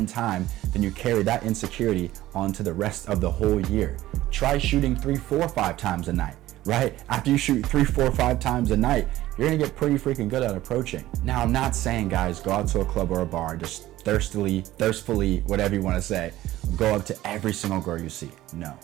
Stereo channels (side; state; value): left; quieter; 15.4 dB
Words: time, then you carry that insecurity onto the rest of the whole year. Try shooting 3, 4, 5 times a night, right? After you shoot 3, 4, 5 times a night, you're gonna get pretty freaking good at approaching. Now, I'm not saying, guys, go out to a club or a bar, just thirstfully, whatever you wanna say, go up to every single girl you see. No,